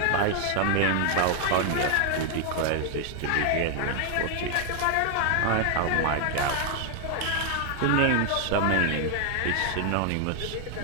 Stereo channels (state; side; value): different; both; correlation 0.00